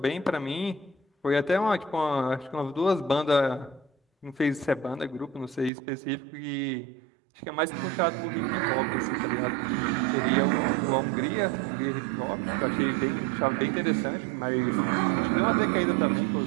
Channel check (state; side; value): drops out; left; at 5.7 s